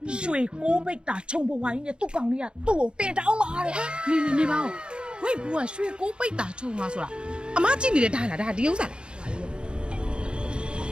ရွှေကိုးပိတ်တာခြုံပွားကြီးနဲ့သူ့ကောင်လေးကသူ့ကိုတင်တောင်းမှာတဲ့။ နေပါဦးဝိတ်ဘူးကရွှေကိုပိတ်တာချုံသွားဆိုတာအမကြည့်နေတဲ့ဒါလားဒါဒီဥစ္စာလား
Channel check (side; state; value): left; late; 0.053 ms